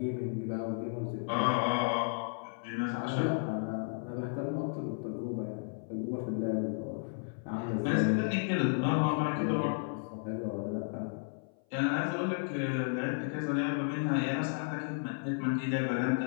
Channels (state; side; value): silent; right; 56 dB below the other